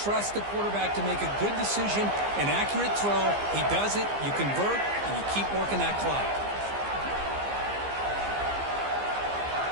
the quarterback to make a good decision, an accurate throw. He does it. You convert, and you keep working that clock.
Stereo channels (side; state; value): left; late; 15 ms